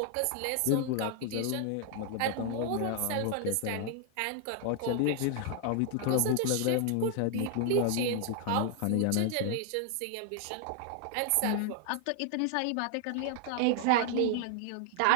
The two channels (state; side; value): different; both; correlation 0.00